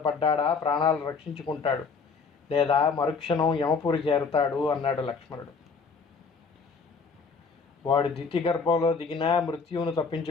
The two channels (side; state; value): right; quieter; 5.0 dB